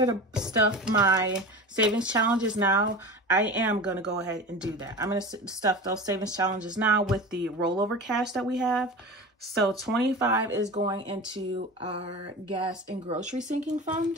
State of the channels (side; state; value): both; normal; correlation 0.31